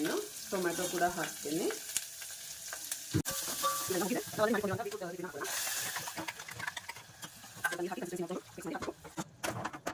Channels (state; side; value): identical; both; correlation 1.00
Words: ಟೊಮ್ಯಾಟೊ ಕೂಡ ಹಾಕ್ತೀನಿ.